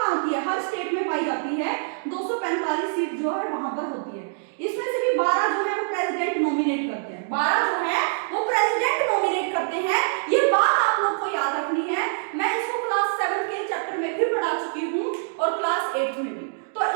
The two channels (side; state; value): left; silent; digital silence